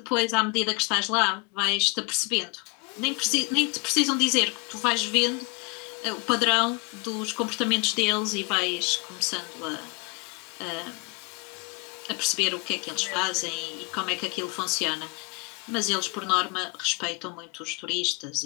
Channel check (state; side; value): quieter; right; 30.1 dB